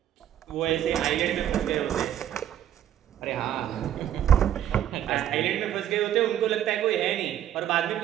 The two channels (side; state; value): left; quieter; 11.0 dB